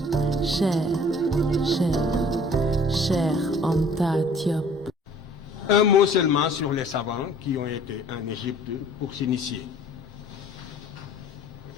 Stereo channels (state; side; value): normal; both; correlation 0.52